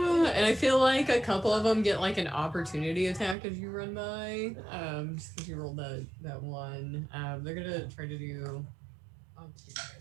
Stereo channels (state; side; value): drops out; left; at 3.4 s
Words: I feel like a couple of them get like an opportunity attack as you run by. Just because you rolled that one. They're gonna try to do. I'll give you